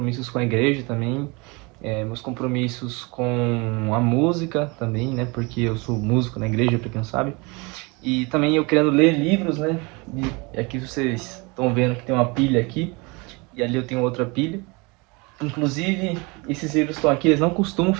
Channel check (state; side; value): quieter; left; 27.5 dB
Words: com a igreja também, meus compromissos com a música também, né? Porque eu sou músico na igreja, pra quem não sabe. E também eu querendo ler livros, né? E aqui vocês estão vendo que tem uma pilha aqui, e ali eu tenho outra pilha. Inclusive, esses livros estão aqui, eles não costumam